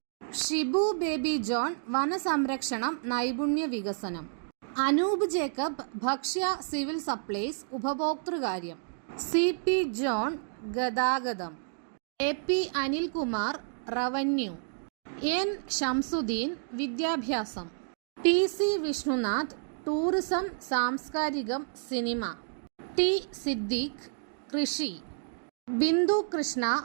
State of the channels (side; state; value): left; silent; digital silence